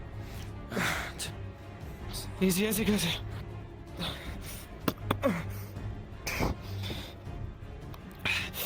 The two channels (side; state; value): both; identical; correlation 1.00